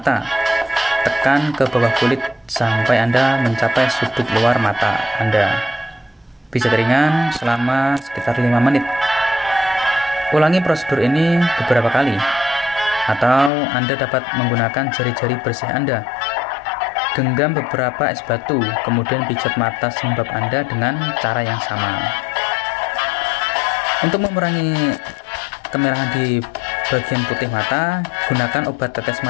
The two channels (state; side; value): drops out; right; at 13.5 s